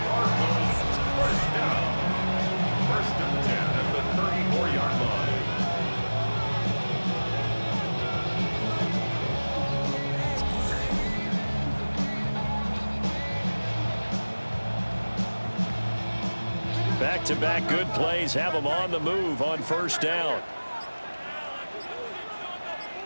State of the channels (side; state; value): both; inverted; correlation -1.00